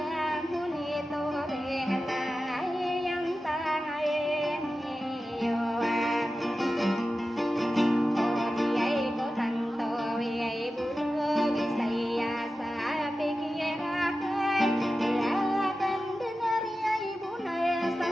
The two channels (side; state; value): both; normal; correlation 0.93